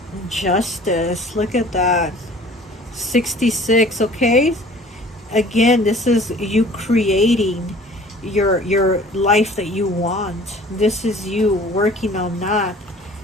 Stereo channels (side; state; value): both; normal; correlation 0.48